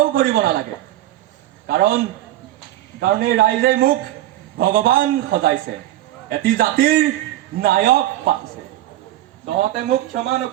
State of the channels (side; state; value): left; quieter; 14.4 dB